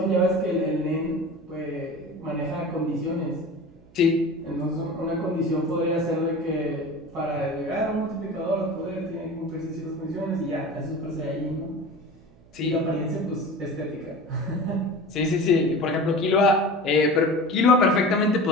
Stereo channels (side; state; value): right; noise; hum, 27 dB below the sound